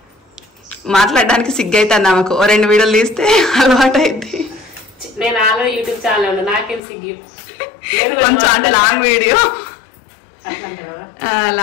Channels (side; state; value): right; drops out; at 6.8 s